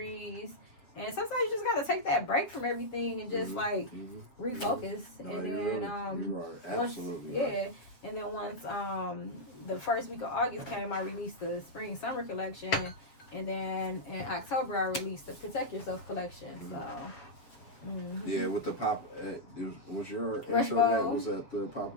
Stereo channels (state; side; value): late; right; 7.4 ms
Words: And sometimes you just gotta take that break from everything and just refocus. No, And you're then absolutely once, right. and then once the first week of August came, I released the spring summer collection, and then in October I released the Protect Yourself collection. So Yeah, with the pop, was your Rush intro that Bowl. was at the